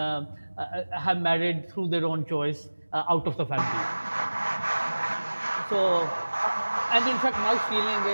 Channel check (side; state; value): both; inverted; correlation -1.00